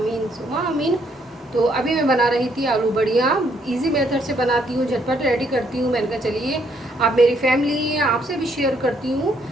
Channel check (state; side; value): normal; both; correlation 0.70